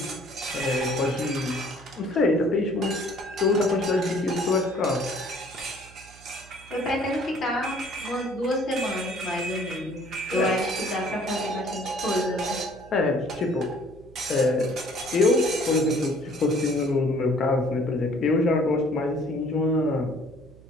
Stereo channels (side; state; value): right; noise; hum, 22 dB below the sound